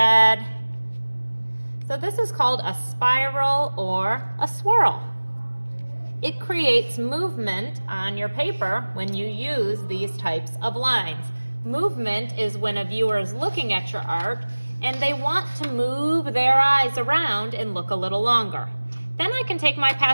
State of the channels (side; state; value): both; inverted; correlation -1.00